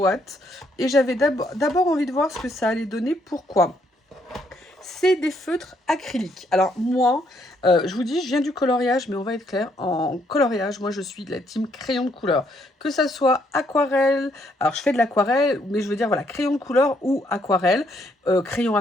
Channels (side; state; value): both; normal; correlation 0.71